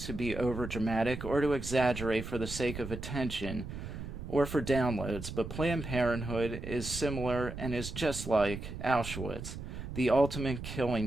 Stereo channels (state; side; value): noise; right; rumble, 8 dB below the sound